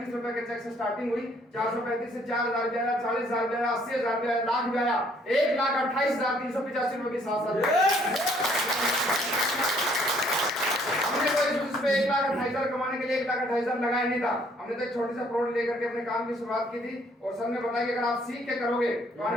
रुपए के चेक से स्टार्टिंग हुई। 435 से 4,000 भी आया, 40,000 भी आया, 80,000 भी आया, लाख भी आया, 1,28,385 रुपए के साथ साथ 1,28,000 कमाने के लिए 1,28,000 लगाया नहीं था। हमने तो एक छोटी सा प्रोडक्ट लेकर के अपने काम की शुरुआत की थी। और सर ने बताया कि अगर आप सीख के करोगे तो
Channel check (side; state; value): both; normal; correlation 0.63